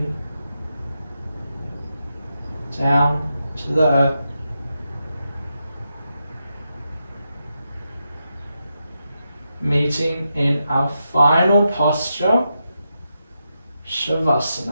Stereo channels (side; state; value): both; inverted; correlation -0.86